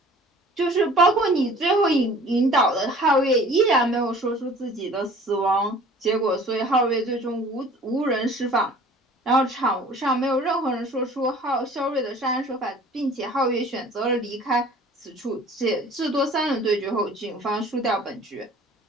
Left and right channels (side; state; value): both; normal; correlation 0.48